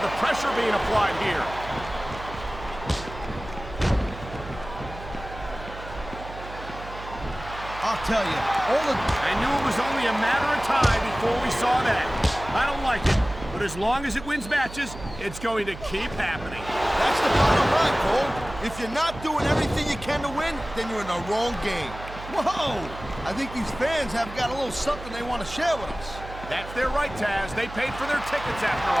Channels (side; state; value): right; noise; hum, 13 dB below the sound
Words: the pressure being applied here. I'll tell you, I knew it was only a matter of time before we saw that. I don't like it, but as long as it wins matches, it's going to keep happening. That's the bottom line, Cole. If you're not doing everything you can to win, then you're in the wrong game. Whoa! I think these fans have got a little something they want to share with us. That's their right, Taz. They paid for their tickets after